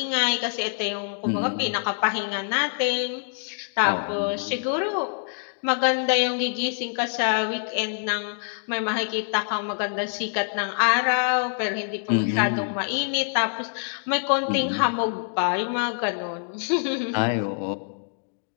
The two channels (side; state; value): right; silent; digital silence